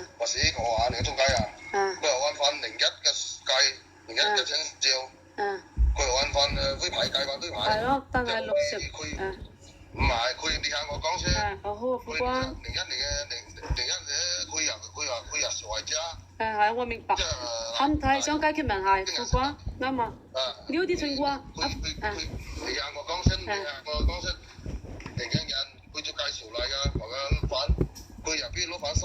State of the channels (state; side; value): identical; both; correlation 1.00